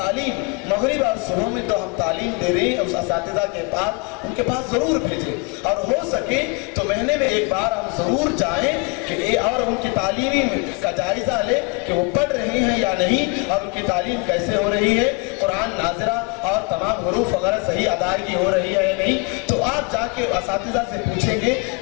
مغرب اور صبح میں تو ہم تعلیم دے رہے ہیں، اس اساتذہ کے پاس ان کے پاس ضرور بھیجیں، اور ہو سکے تو مہینے میں ایک بار ہم ضرور جائیں کہ اور ان کی تعلیمی کا جائزہ لے کہ وہ پڑھ رہے ہیں یا نہیں، اور ان کی تعلیم کیسے ہو رہی ہے، قرآن ناظرہ اور تمام حروف وغیرہ صحیح ادائیگی ہو رہی ہے یا نہیں۔ تو آپ جا کے اساتذہ سے پوچھیں گے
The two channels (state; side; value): quieter; right; 28.4 dB